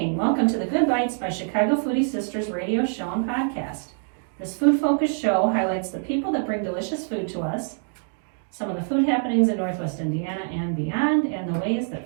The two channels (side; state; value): left; silent; 62 dB below the other